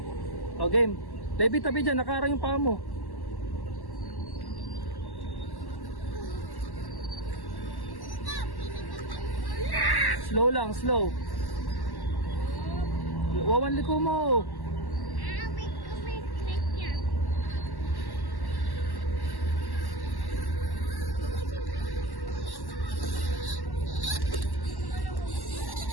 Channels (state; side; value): late; right; 1.1 ms